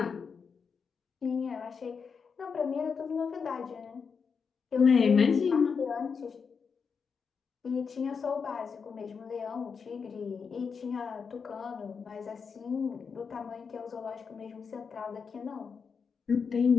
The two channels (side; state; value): right; quieter; 5.8 dB